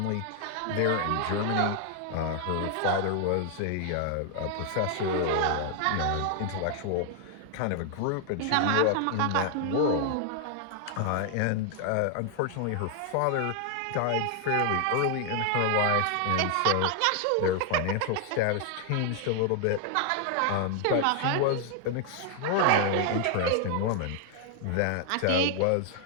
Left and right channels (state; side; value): different; both; correlation 0.00